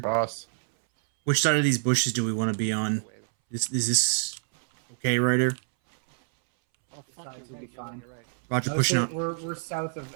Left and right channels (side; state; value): left; silent; 60 dB below the other